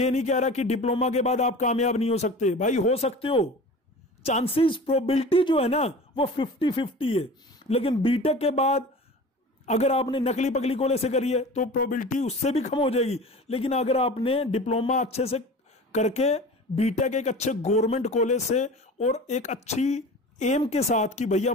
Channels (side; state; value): both; normal; correlation 0.37